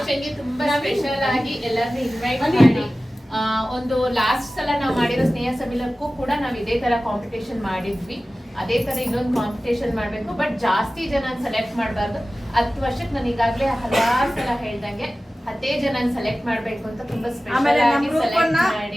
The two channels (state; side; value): normal; both; correlation 0.96